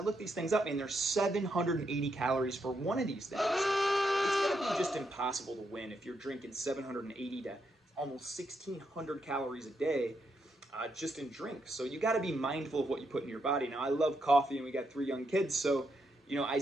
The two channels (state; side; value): normal; both; correlation 0.80